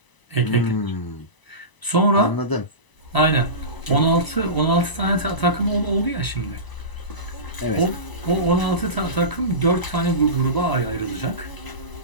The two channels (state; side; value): late; right; 1.0 ms